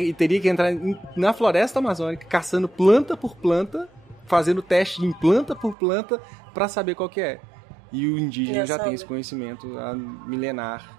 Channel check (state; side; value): drops out; left; at 5.8 s